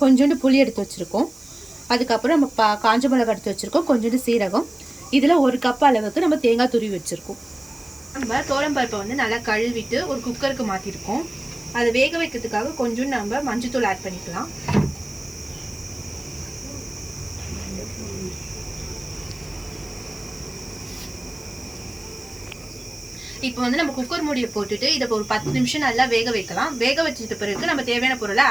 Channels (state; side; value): noise; right; hiss, 23 dB below the sound